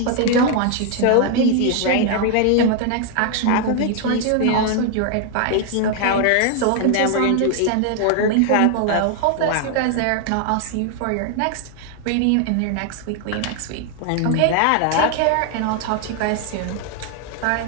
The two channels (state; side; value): different; both; correlation 0.00